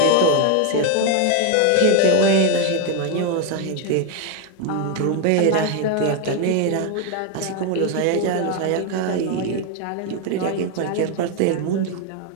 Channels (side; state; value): both; different; correlation 0.01